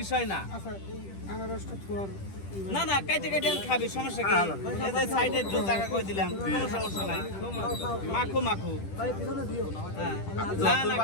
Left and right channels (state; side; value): late; right; 10 ms